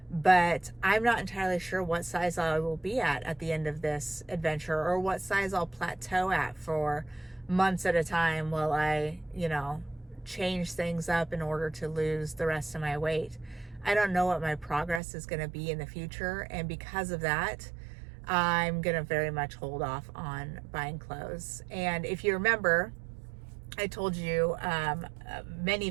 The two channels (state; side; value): drops out; left; at 15.0 s